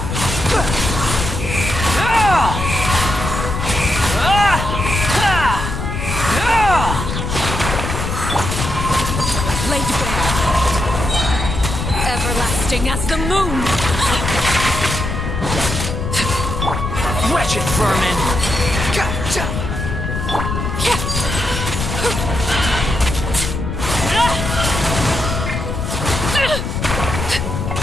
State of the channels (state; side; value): noise; left; rumble, 3 dB below the sound